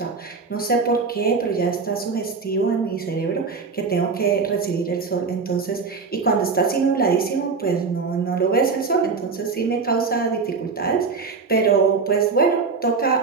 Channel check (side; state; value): left; quieter; 4.8 dB